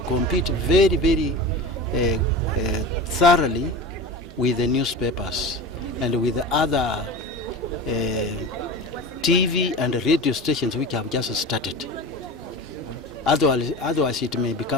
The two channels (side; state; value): both; normal; correlation 0.31